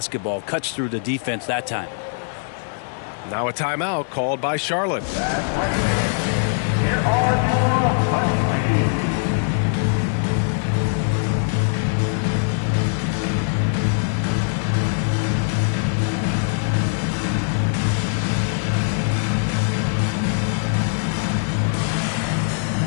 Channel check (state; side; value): silent; right; digital silence